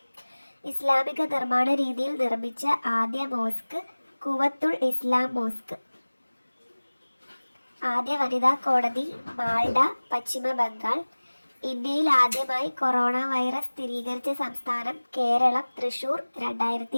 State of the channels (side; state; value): both; inverted; correlation -1.00